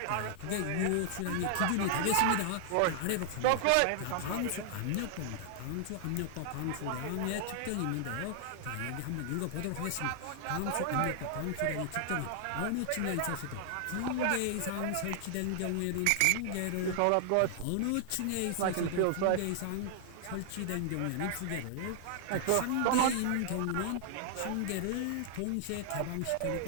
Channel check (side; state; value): both; different; correlation -0.01